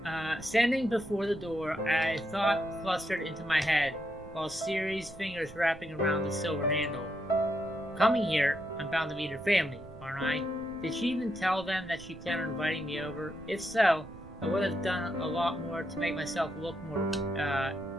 Standing before the door, a thought clustered into my head, while Siri's fingers wrapping around the silver handle. Coming here, I'm bound to meet her family, aren't I? Did she even tell them that she planned on inviting me over? If so, I would have done a lot more to make myself look more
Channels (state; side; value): noise; right; rumble, 18 dB below the sound